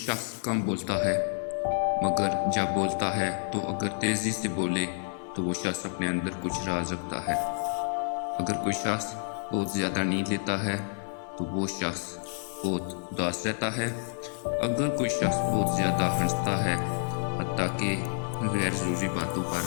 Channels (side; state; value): right; silent; 59 dB below the other